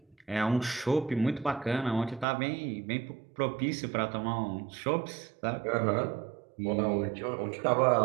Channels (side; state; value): left; drops out; at 2.2 s